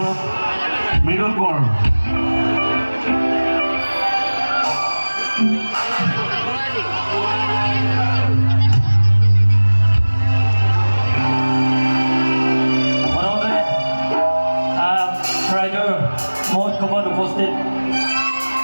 মৃদুল কোঁৱৰ। ৰাইজৰ মহোৎসৱত উপস্থিত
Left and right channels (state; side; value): inverted; both; correlation -1.00